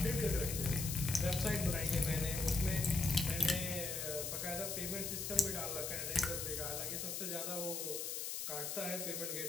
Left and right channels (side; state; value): left; noise; hiss, 3 dB below the sound